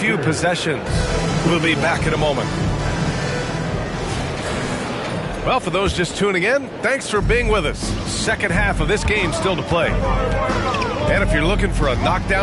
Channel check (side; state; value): both; identical; correlation 1.00